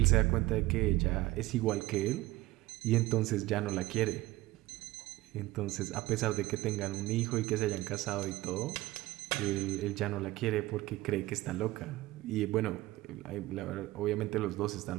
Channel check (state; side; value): quieter; left; 18.0 dB